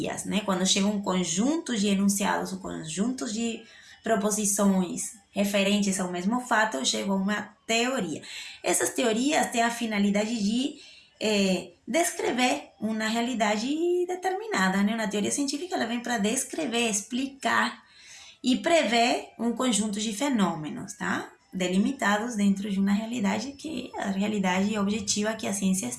né? Quando chega um conjunto de enunciados, um conjunto de proposições referentes ao mesmo fato, chega a uma teoria. Essas teorias têm a finalidade de descrever uma realidade determinada, né? Uma teoria científica ela vem para descrever, explicar e prever um conjunto de fenômenos, tá? Delimitados dentro de uma realidade que é a realidade objetiva que a ciência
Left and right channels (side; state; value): both; identical; correlation 1.00